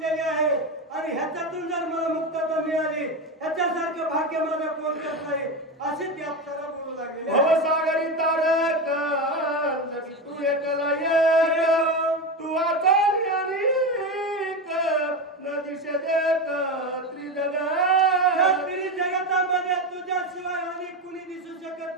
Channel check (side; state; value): both; normal; correlation 0.17